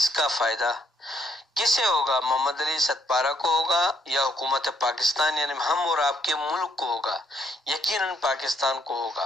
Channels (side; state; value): both; normal; correlation 0.72